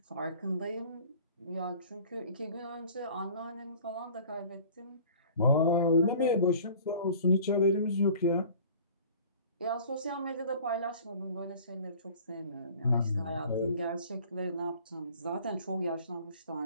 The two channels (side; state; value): both; inverted; correlation -0.48